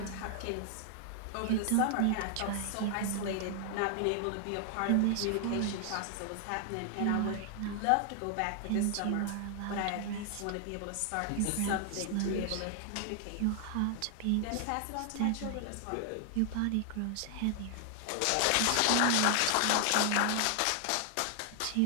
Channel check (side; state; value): both; different; correlation 0.00